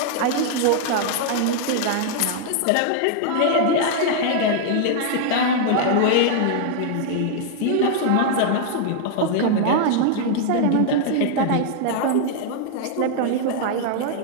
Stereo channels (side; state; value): both; different; correlation 0.00